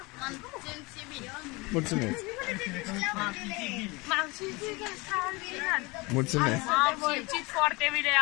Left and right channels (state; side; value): quieter; right; 25.1 dB